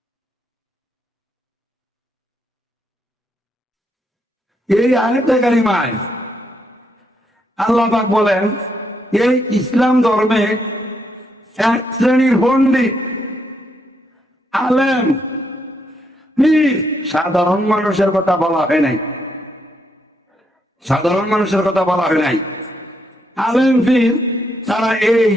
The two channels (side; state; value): both; normal; correlation 0.77